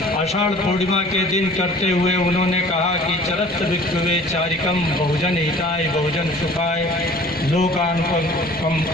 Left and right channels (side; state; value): right; noise; rumble, 27 dB below the sound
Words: आषाढ़ पूर्णिमा के दिन करते हुए उन्होंने कहा कि चरत भिक्षुवे चारिकम बहुजन हिताय बहुजन सुखाय लोकान